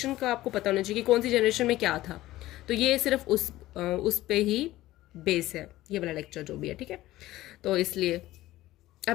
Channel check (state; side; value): quieter; right; 16.2 dB